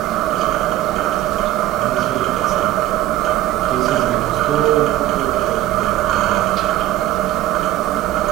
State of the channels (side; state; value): left; quieter; 14.4 dB